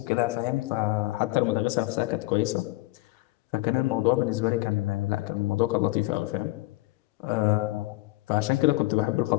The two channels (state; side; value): quieter; right; 20.6 dB